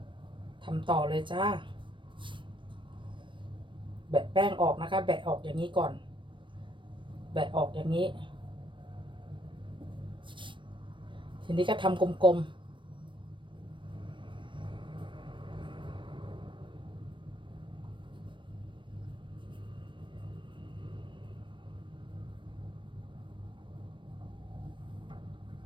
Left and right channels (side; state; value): left; late; 0.24 ms